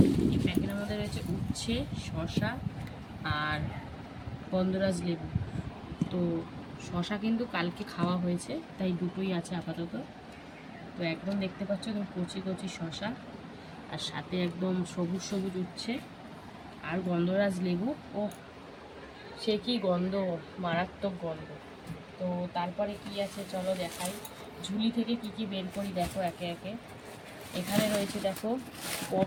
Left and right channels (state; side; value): identical; both; correlation 1.00